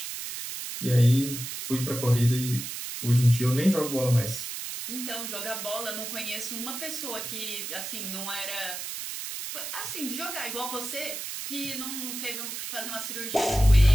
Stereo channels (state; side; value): noise; right; hiss, 6 dB below the sound